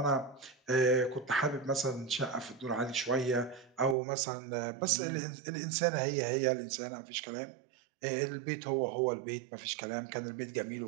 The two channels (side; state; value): left; drops out; at 4.0 s